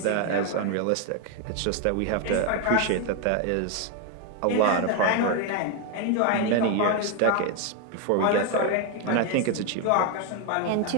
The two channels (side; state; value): both; different; correlation 0.01